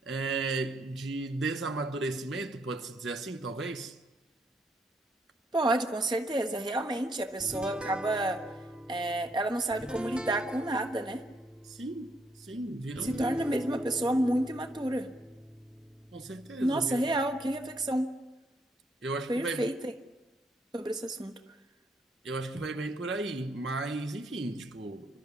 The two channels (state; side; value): normal; both; correlation 0.73